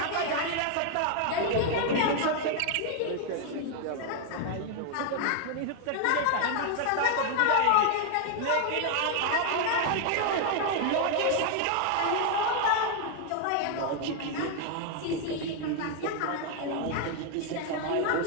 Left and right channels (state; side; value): different; both; correlation 0.00